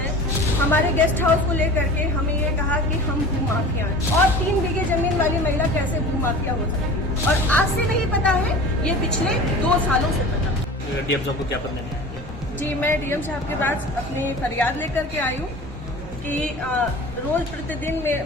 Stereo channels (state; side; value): normal; both; correlation 0.38